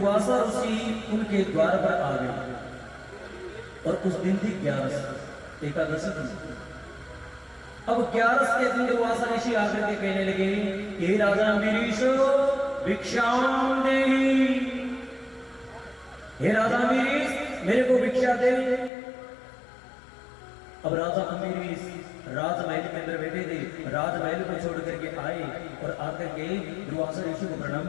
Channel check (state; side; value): drops out; right; at 18.9 s